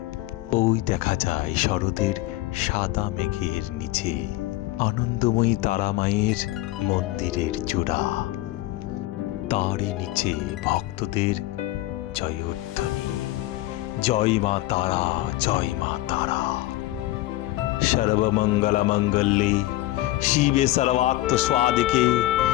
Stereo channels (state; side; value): quieter; right; 16.9 dB